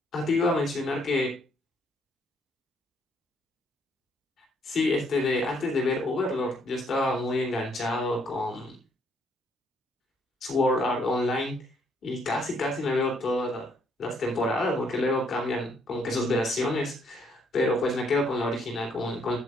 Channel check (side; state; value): both; normal; correlation 0.69